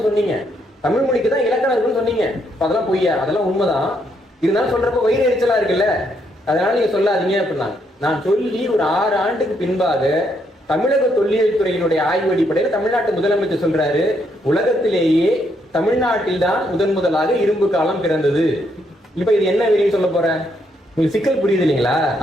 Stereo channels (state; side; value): normal; both; correlation 0.75